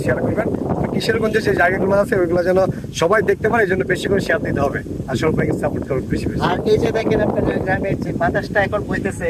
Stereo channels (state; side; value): identical; both; correlation 1.00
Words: শেয়ার করবেন। আর কিশোরগঞ্জের যে জায়গাগুলো আছে ওইগুলো যেন সবাই দেখতে পারে, এই জন্য বেশি করে শেয়ার দিতে হবে। আর সৌরভ ভাইকে সাপোর্ট করবেন বেশি বেশি। আর এই যে দেখেন আপনাদের গ্রামের যে বাতাসটা এখন বইতেছে,